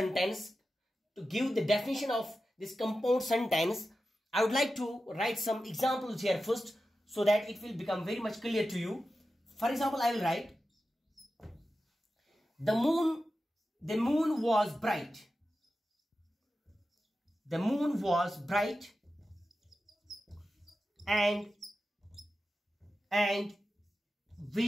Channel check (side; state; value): both; normal; correlation 0.92